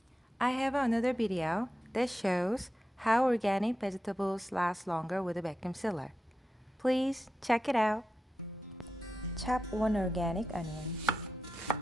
I have another video that shows how organic vegetables last longer with a vacuum sealer. Please check it out. Chop 1 organic onion.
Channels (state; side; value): normal; both; correlation 0.90